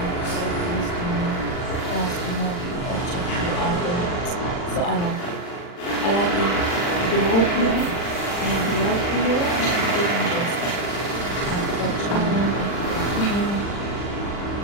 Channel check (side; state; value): right; late; 40 ms